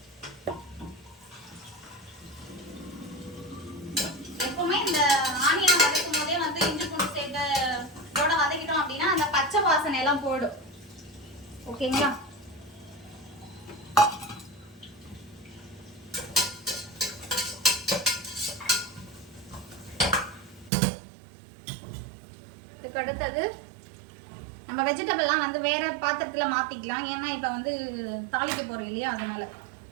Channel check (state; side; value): drops out; left; at 20.7 s